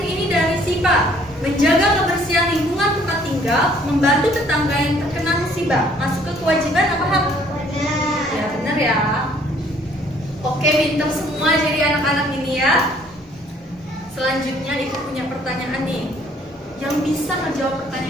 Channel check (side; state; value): both; normal; correlation 0.60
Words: ini dari Sipa, menjaga kebersihan lingkungan tempat tinggal, membantu tetangga yang terkena musibah, masuk ke kewajiban apa hak? Ya benar ya. Oke, pintar semua jadi anak-anak ini ya. Selanjutnya Ibu punya pertanyaan nih. Yang bisa menjawab